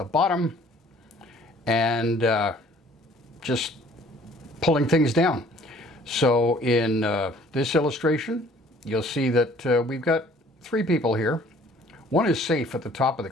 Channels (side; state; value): both; normal; correlation 0.56